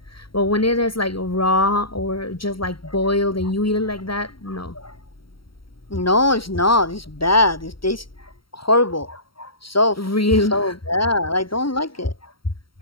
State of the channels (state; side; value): late; right; 0.74 ms